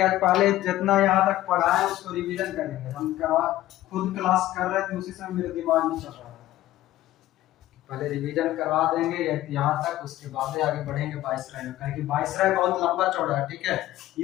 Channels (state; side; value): quieter; right; 15.0 dB